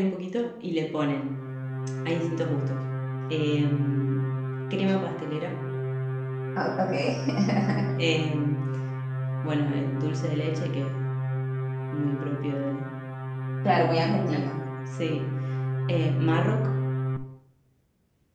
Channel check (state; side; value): identical; both; correlation 1.00